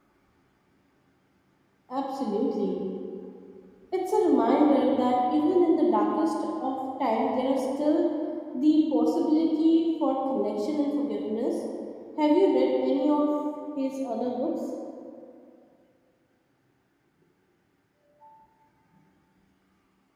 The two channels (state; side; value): identical; both; correlation 1.00